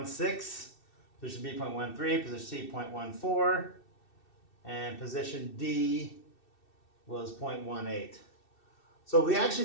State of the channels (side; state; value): right; late; 2.6 ms